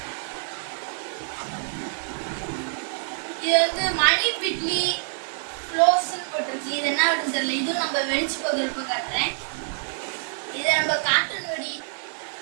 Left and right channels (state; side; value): silent; left; digital silence